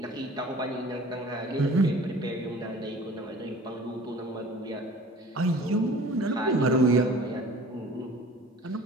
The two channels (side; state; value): both; normal; correlation 0.45